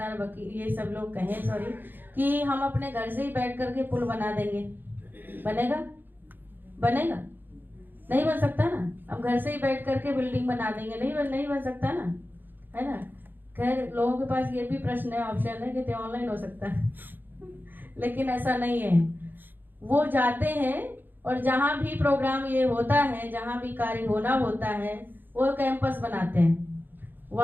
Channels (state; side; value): late; left; 0.092 ms